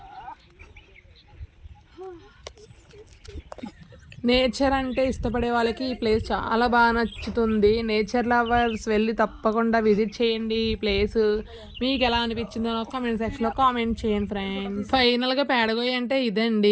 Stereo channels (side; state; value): both; identical; correlation 1.00